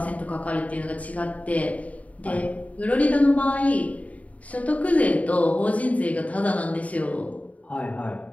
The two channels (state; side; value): late; right; 0.069 ms